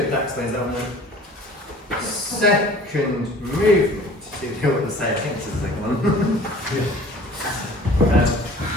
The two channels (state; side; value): normal; both; correlation 0.47